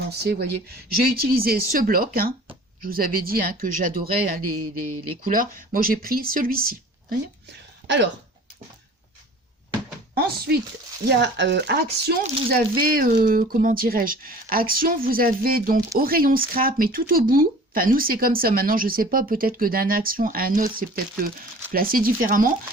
vous voyez, j'ai utilisé ce bloc, hein, je vous avais dit hein, que j'adorais hein, les couleurs. Moi, j'ai pris celui-ci. Alors, ensuite, il y a Action, vous avez, comment dirais-je, Action, vous avez donc au rayon scrap, mais tout au bout. Enfin, nous, c'est comme ça. Maintenant, je ne sais pas, peut-être que d'un Action à un autre, c'est peut-être placé différemment.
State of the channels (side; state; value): both; normal; correlation 0.45